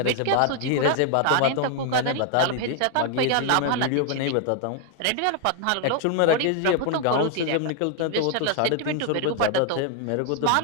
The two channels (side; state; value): both; different; correlation 0.00